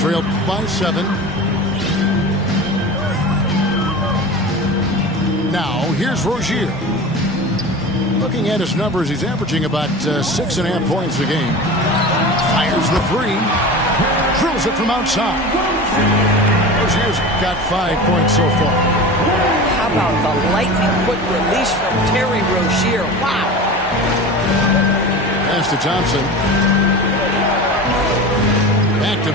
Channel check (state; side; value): normal; both; correlation 0.32